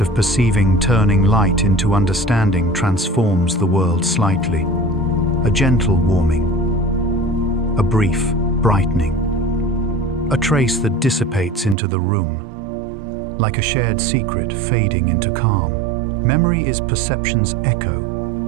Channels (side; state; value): left; drops out; at 11.8 s